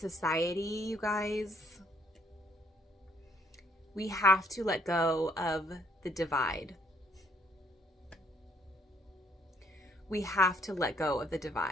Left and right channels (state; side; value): normal; both; correlation 0.68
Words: you guys, we have to let go of the divide. We have to let go of the